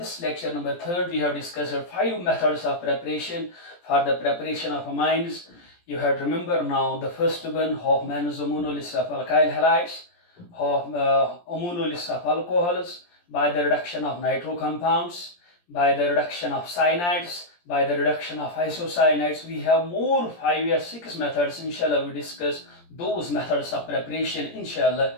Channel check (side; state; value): right; late; 17 ms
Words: lecture number 3, we have discussed 5 methods of preparation for the preparation of amines. You have to remember now the first one, Hofmann's amino list of alkyl halides, amino list of alcohols, by the reduction of nitro compounds, by the reduction of cyanides, by the reduction of isocyanides. We have more 5 or 6 methods. Inshallah, we discuss those methods of preparation, inshallah,